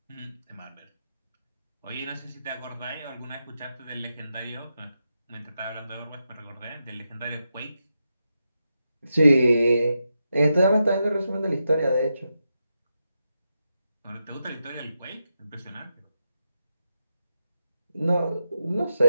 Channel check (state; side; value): inverted; both; correlation -0.86